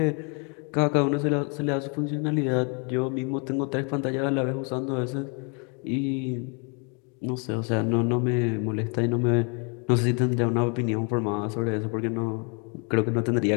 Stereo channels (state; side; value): quieter; right; 36.1 dB